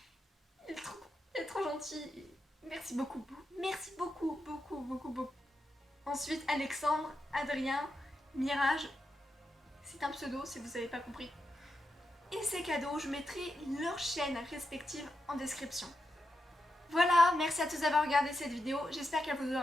il est trop gentil. Merci beaucoup. Merci beaucoup. Ensuite, Alexandre, Adrien, Mirage. C'est un pseudo si vous n'avez pas compris. Et ces cadeaux, je mettrai leurs chaînes respectives en description. Voilà, merci à tous d'avoir regardé cette vidéo, j'espère qu'elle vous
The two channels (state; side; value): normal; both; correlation 0.86